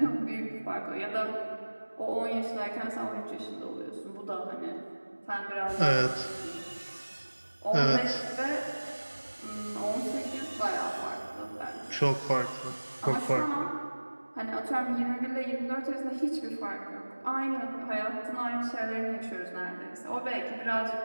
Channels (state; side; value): inverted; both; correlation -1.00